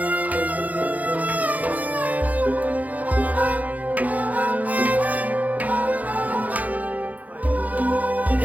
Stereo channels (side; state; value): left; late; 0.077 ms